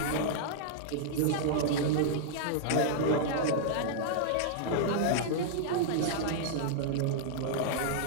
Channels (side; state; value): both; different; correlation -0.01